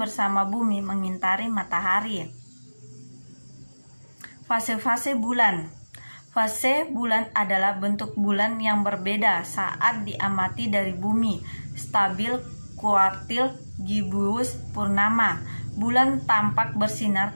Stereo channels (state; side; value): inverted; both; correlation -1.00